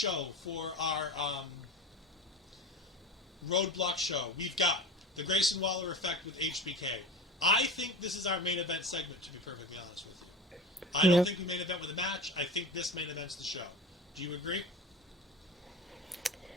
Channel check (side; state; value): both; normal; correlation 0.31